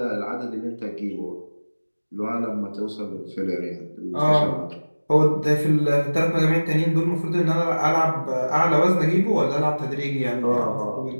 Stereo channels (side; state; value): both; inverted; correlation -1.00